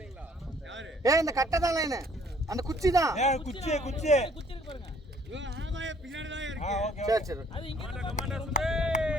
ஏய் இந்த கட்டை தான் லைன். அந்த குச்சி தான். ஏய் குச்சி குச்சி. இவன் ஆமாயே பின்னாடி தான் இருக்கு. ஓகே. சரி சரி. அது இங்க கமாண்டர் சுதே.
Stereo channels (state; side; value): normal; both; correlation 0.60